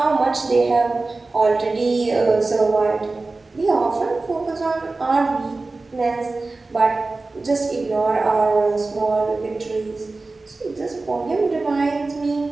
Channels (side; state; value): left; quieter; 3.5 dB